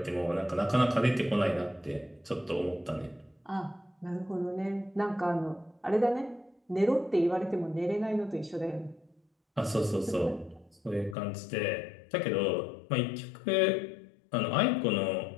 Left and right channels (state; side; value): drops out; right; at 11.2 s